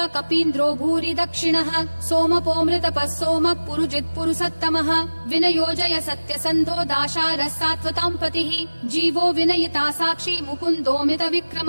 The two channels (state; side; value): inverted; both; correlation -1.00